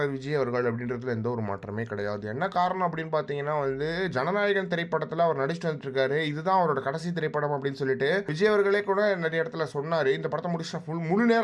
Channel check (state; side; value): identical; both; correlation 1.00